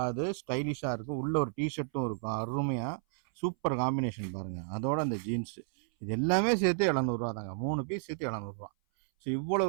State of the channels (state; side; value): silent; left; 56 dB below the other